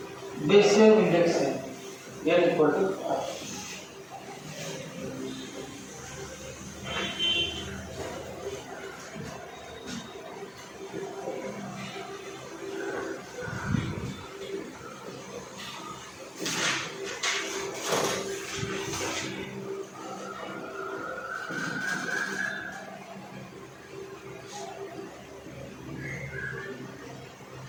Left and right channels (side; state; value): both; identical; correlation 1.00